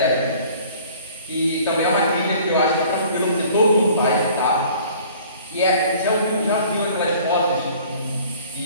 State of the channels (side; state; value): both; inverted; correlation -0.51